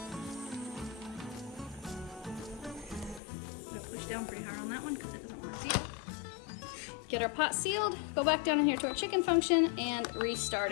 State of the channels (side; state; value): right; drops out; at 3.2 s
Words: gonna push down pretty hard on that one because it doesn't want to seal. Get our pot sealed, go back down in here to our chicken function, and restart